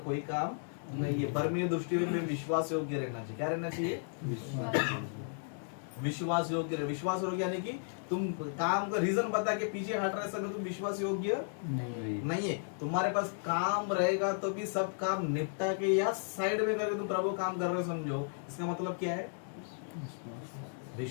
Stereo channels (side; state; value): right; silent; digital silence